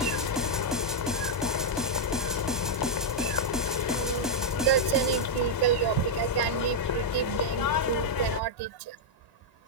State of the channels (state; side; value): normal; both; correlation -0.02